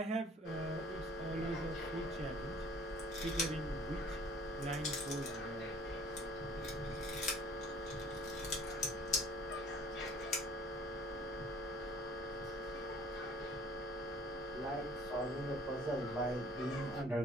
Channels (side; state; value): both; normal; correlation 0.52